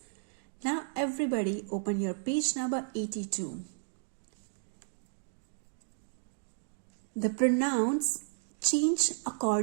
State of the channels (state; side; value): silent; left; digital silence